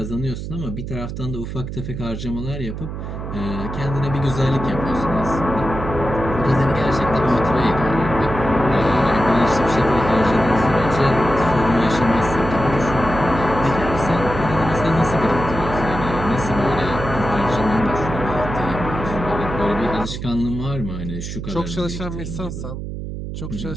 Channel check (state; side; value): noise; right; hum, 7 dB below the sound